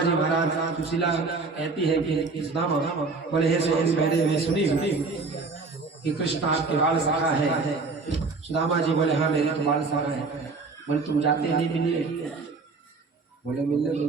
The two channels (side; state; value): left; quieter; 4.1 dB